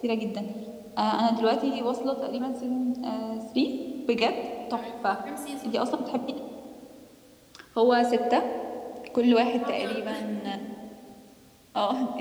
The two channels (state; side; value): identical; both; correlation 1.00